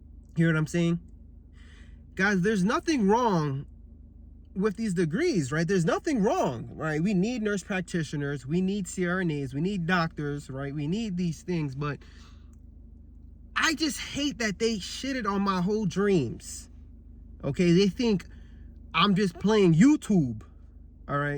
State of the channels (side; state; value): both; identical; correlation 1.00